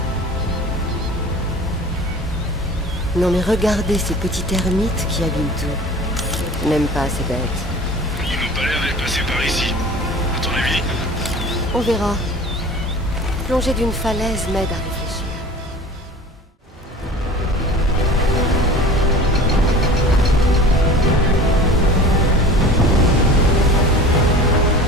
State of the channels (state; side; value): normal; both; correlation 0.40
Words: Non mais regardez ces petits termites qui abîment tout. Je n'aime pas ces bêtes. Ils n'ont pas l'air d'être passés par ici. À ton avis? On verra. Plonger d'une falaise m'aide à réfléchir.